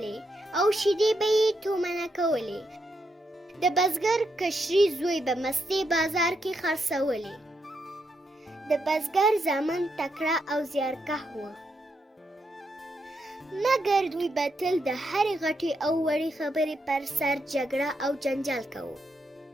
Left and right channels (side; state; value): both; normal; correlation 0.81